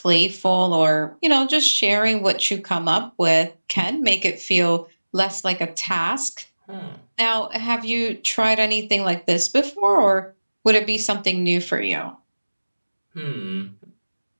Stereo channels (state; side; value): inverted; both; correlation -1.00